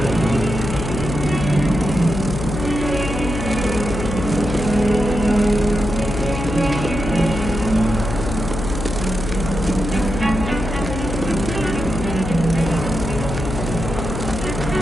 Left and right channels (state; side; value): noise; left; hum, 5 dB below the sound